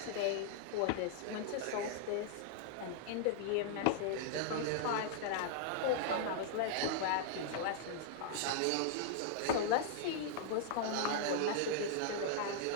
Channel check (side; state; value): both; different; correlation -0.01